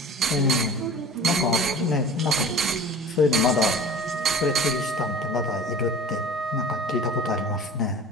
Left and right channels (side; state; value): both; normal; correlation 0.41